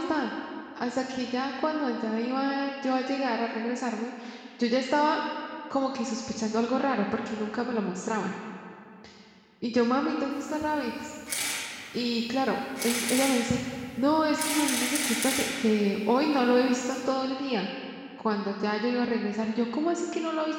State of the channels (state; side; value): identical; both; correlation 1.00